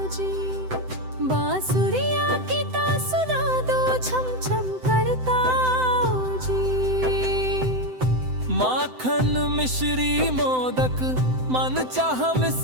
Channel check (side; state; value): left; late; 7.8 ms